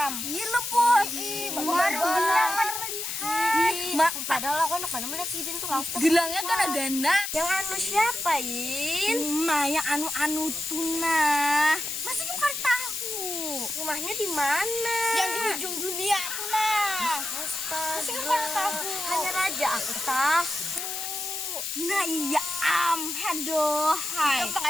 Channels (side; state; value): left; noise; hiss, 4 dB below the sound